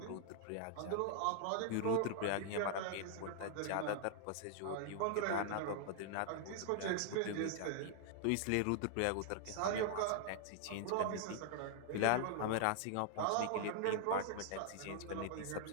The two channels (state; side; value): different; both; correlation -0.01